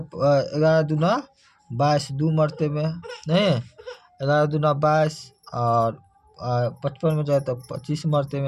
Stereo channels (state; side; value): identical; both; correlation 1.00